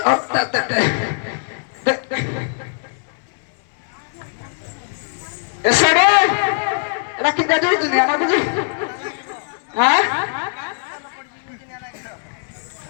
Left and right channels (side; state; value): right; silent; 65 dB below the other